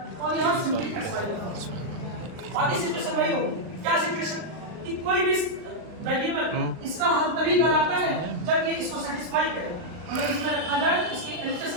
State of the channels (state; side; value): late; left; 39 ms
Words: और यहां सिंपली xy होगा। बाकी सिचुएशन वही होगी। क्या सिचुएशन? कि कोई भी वेरिएबल इसका हल तभी कहलाता है जब ये इसको सेटिस्फाई करे, अगर इसमें रखा जाए तो इसके LHS